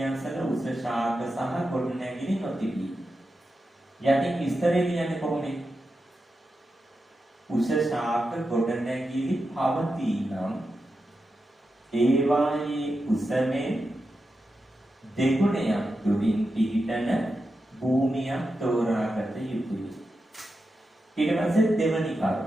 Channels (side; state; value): both; normal; correlation 0.89